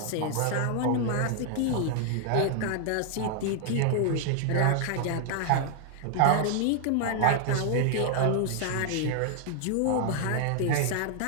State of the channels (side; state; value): both; different; correlation 0.00